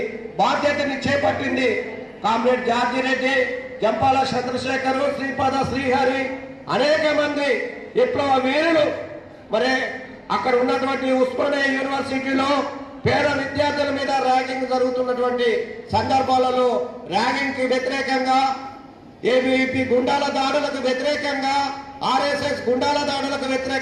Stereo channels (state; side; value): identical; both; correlation 1.00